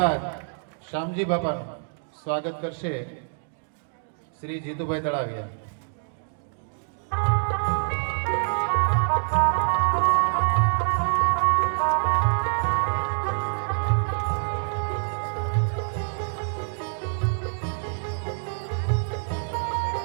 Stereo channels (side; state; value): left; silent; digital silence